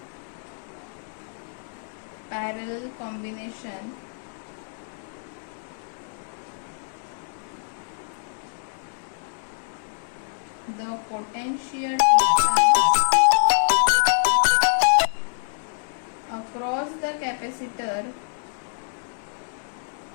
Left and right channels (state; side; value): silent; right; digital silence